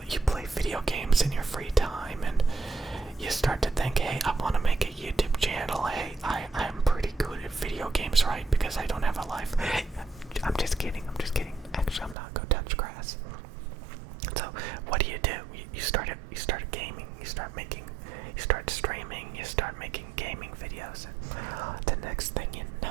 you play video games in your free time, and you start to think, hey, I want to make a YouTube channel. Hey, I'm pretty good at video games, right? Because I don't have a life. I'm just kidding. Actually, I'm not. Go touch grass. So what do? You start gaming. You start streaming. You start making gaming videos, and the next thing you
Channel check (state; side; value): drops out; left; at 12.2 s